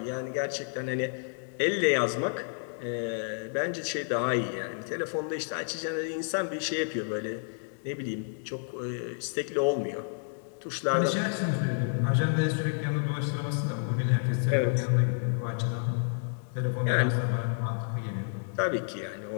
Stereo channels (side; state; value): right; silent; 58 dB below the other